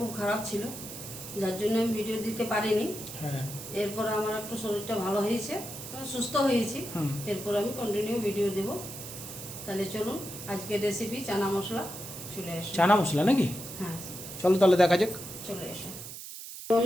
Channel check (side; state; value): right; noise; hiss, 11 dB below the sound